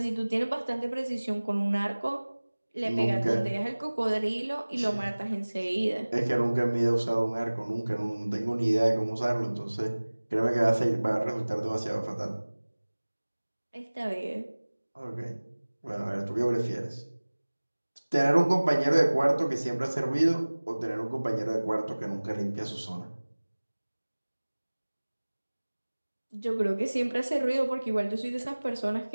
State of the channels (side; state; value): both; inverted; correlation -1.00